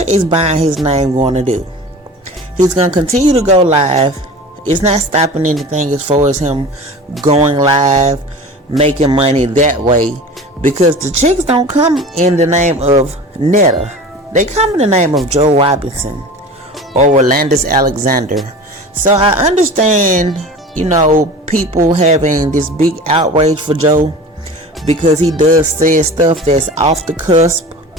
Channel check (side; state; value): both; normal; correlation 0.37